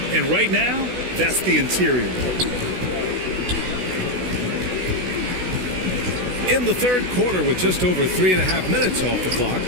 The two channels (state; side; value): late; left; 16 ms